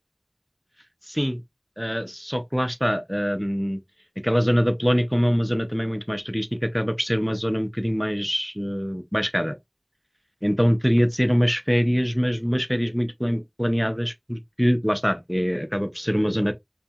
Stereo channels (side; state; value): both; identical; correlation 1.00